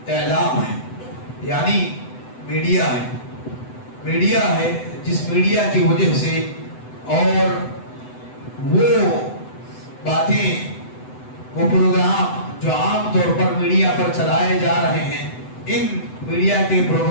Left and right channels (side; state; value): right; late; 7.9 ms